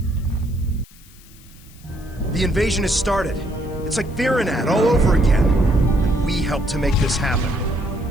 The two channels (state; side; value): noise; left; hiss, 25 dB below the sound